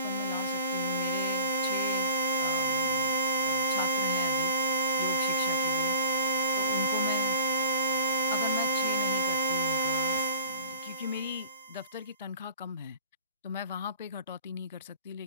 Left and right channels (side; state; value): both; inverted; correlation -0.46